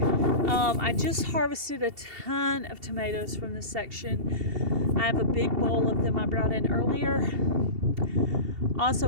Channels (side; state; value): left; late; 2.7 ms